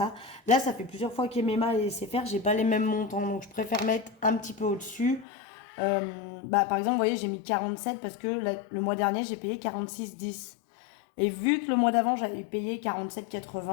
Là, ça fait plusieurs fois qu'MMA et SFR, j'ai pas les mêmes montants, donc je préfère mettre un petit peu au-dessus. Par exemple, vous voyez, j'ai mis 47 parce que le mois dernier, j'ai payé 46,10. Et vu que le mois d'avant, j'avais payé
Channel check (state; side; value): drops out; right; at 5.2 s